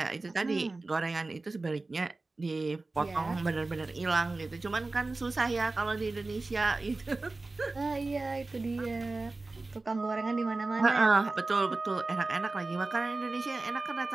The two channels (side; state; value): left; quieter; 3.3 dB